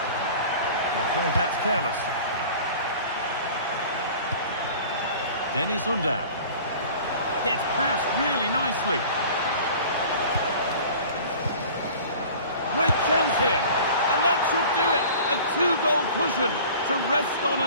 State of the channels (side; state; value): both; inverted; correlation -0.43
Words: I'm afraid that's careless. Dennis Undav. Gets past really nicely. Great chance here. And that should do it. A two-goal cushion to rest on